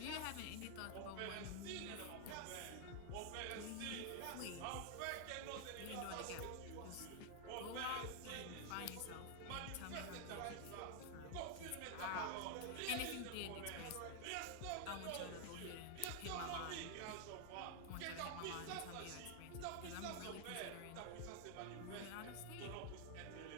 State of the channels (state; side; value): different; both; correlation 0.00